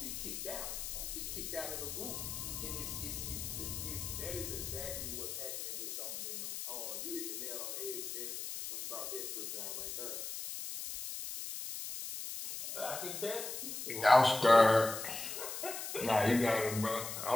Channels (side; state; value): left; noise; hiss, 6 dB below the sound